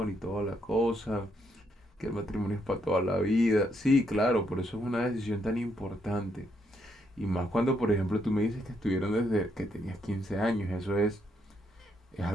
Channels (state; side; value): normal; both; correlation 0.75